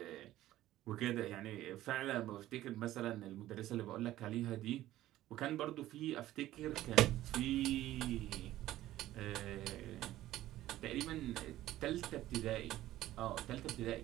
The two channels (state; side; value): quieter; left; 14.6 dB